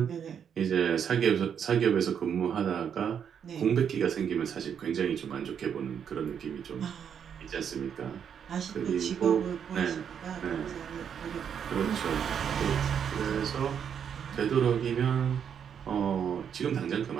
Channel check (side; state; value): left; quieter; 7.9 dB